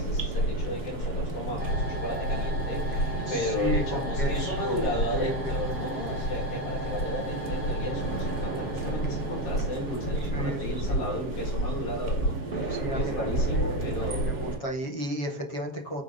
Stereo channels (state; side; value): late; right; 7.3 ms